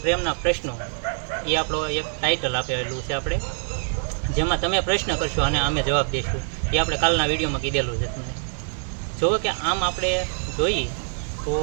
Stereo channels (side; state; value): left; silent; digital silence